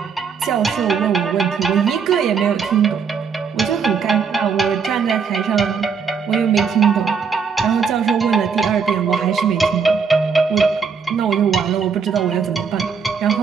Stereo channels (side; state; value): left; quieter; 6.0 dB